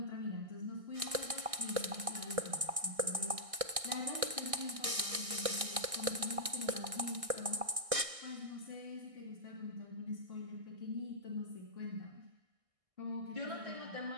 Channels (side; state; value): left; late; 1.6 ms